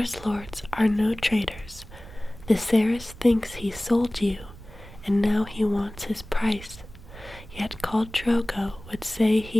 lords are no traitors. Viserys thinks he sold you, and now he wants his price. Yet Khal Drogo would say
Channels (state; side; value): noise; right; rumble, 17 dB below the sound